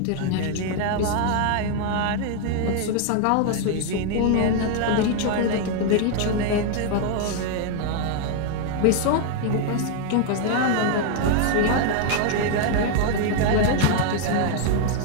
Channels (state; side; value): different; both; correlation 0.00